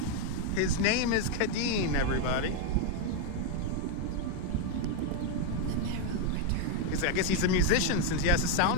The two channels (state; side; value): different; both; correlation 0.01